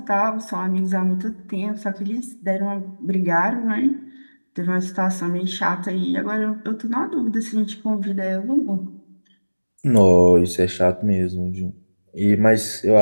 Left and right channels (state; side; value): inverted; both; correlation -1.00